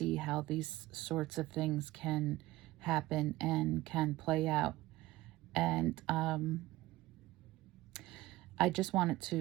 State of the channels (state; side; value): quieter; left; 17.8 dB